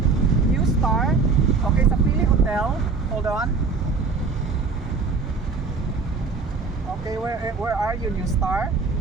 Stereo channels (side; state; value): left; quieter; 4.6 dB